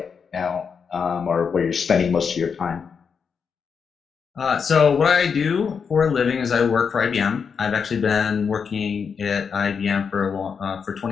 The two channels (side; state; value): right; quieter; 6.2 dB